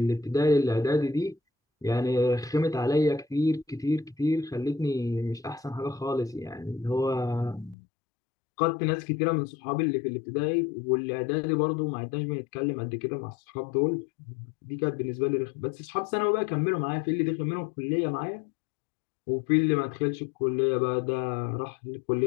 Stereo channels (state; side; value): drops out; right; at 7.8 s